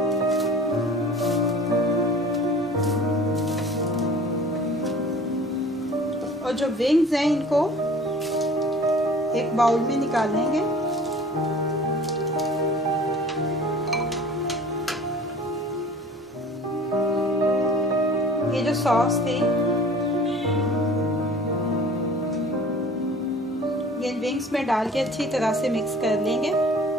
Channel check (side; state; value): both; normal; correlation 0.46